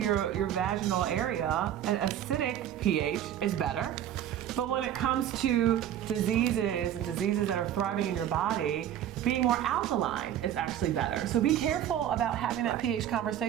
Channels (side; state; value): left; quieter; 10.8 dB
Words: vaginal area, an acidic pH is better. But when it comes to diseases and diseases that are thriving in your body, being more alkaline is actually better. So be careful about having that pH